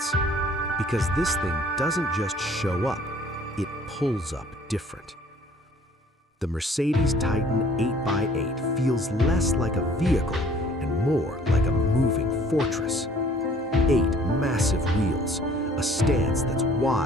Because this thing doesn't just show up, it pulls up different. The Mercedes Titan 8x8 feels less like a vehicle and more like a moving fortress. 8 massive wheels, a stance that's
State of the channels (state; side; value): normal; both; correlation 0.56